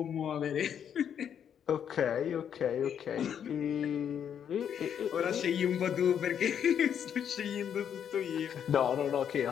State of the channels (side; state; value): right; quieter; 8.6 dB